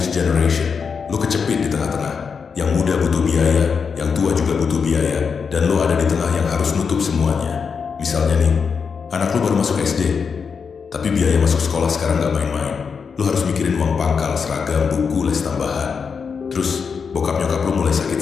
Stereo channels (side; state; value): right; quieter; 5.9 dB